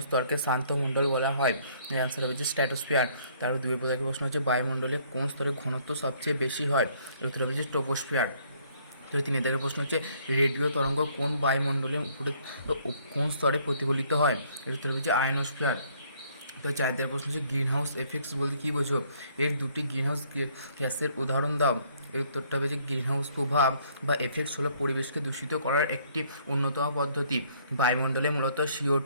স্তরকে শান্ত মণ্ডল বলা হয়? এর অ্যান্সার হবে যে স্ট্র্যাটোস্ফিয়ার। তারপর দুই প্রকারের প্রশ্ন হচ্ছে বায়ুমণ্ডলে কোন স্তরে ঘনত্ব সবচেয়ে বেশি হয়? এর উত্তর হবে যে ট্রপোস্ফিয়ার। তো তিনের দাগের প্রশ্ন হচ্ছে রেডিও তরঙ্গ কোন বায়ুমণ্ডলের উপরে কোন স্তরে প্রতিফলিত হয়? এর উত্তর হবে যে আয়নোস্ফিয়ার। তো চার দাগের প্রশ্ন হচ্ছে গ্রিন হাউস এফেক্টস বলতে কী বোঝো? এর দুটি গ্রিন হাউস গ্যাসের উদাহরণ দাও। এর উত্তরটা হবে যে গ্রিন হাউস প্রভাব বা এফেক্টস হলো পরিবেশকে দূষিত করার একটি অন্যতম পদ্ধতি। বায়ুমণ্ডলে মূলত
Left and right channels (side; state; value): both; inverted; correlation -0.63